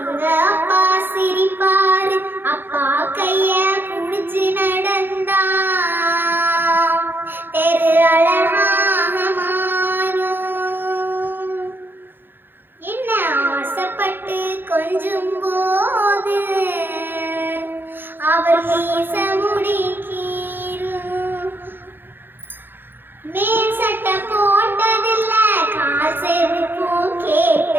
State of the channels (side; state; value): left; late; 0.099 ms